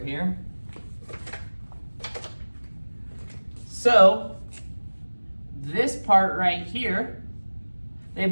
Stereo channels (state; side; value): inverted; both; correlation -1.00